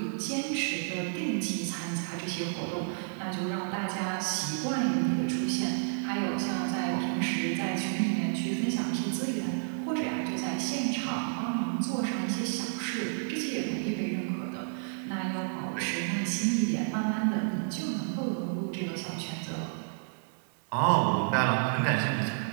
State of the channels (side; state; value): left; silent; digital silence